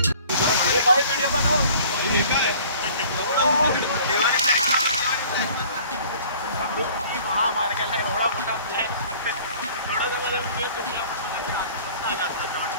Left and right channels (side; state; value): both; inverted; correlation -0.50